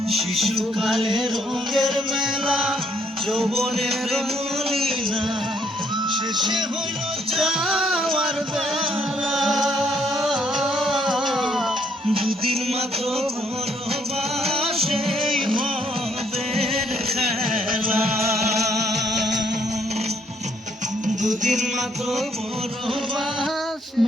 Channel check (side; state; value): both; normal; correlation 0.69